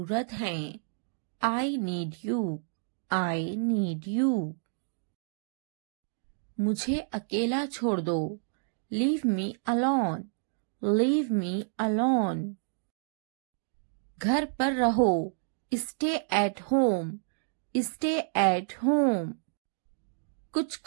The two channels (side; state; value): left; silent; digital silence